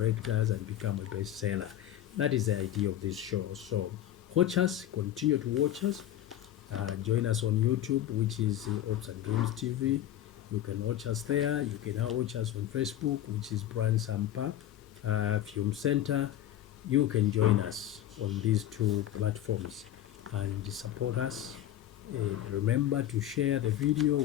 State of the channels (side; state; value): right; quieter; 12.1 dB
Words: and become a bestseller. That is the idea of this show. So watch us, continue to watch us. Join us on YouTube, which is Ops and Dreams TV. You can watch us there. You can now watch us on Facebook, which is Brian Sampa Film Center. You can join us on these two platforms and support us. Remember to share the video